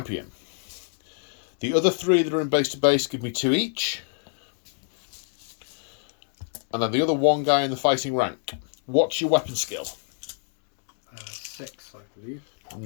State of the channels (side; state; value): right; silent; digital silence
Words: The other 3 that are in base to base give me 2 each. And then the other 1 guy in the fighting rank. What's your weapon skill? 6, I believe.